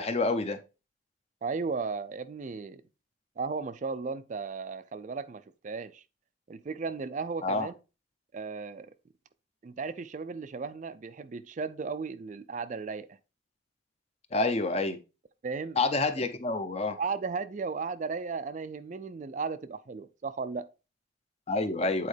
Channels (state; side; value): normal; both; correlation 0.04